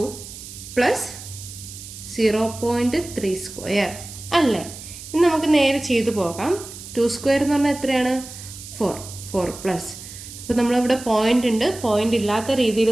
plus 0.3 square അല്ലേ. ഇനി നമുക്ക് നേരെ ചെയ്തു പോകാം. 2 സ്ക്വയർ എന്ന് പറഞ്ഞാൽ എത്രയാണ്? 4 പ്ലസ്. അപ്പോൾ നമ്മളിവിടെ പോയിന്റ് ഉണ്ട്. പോയിന്റ് ഇല്ലാത്ത രീതിയിൽ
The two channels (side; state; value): right; noise; hiss, 13 dB below the sound